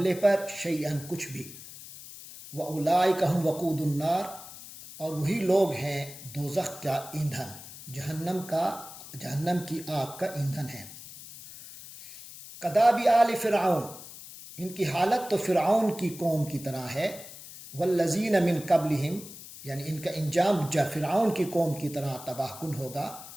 پر، شیئن، کچھ بھی، واولئک هم وقود النار، اور وہی لوگ ہیں دوزخ کا ایندھن، جہنم کی آگ کا ایندھن ہے۔ کداب آل فرعون، ان کی حالت تو فرعون کی قوم کی طرح ہے، والذین من قبلہم، یعنی ان کا انجام فرعون کی قوم کی طرح تباہ کن ہوگا،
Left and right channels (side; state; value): left; noise; hiss, 15 dB below the sound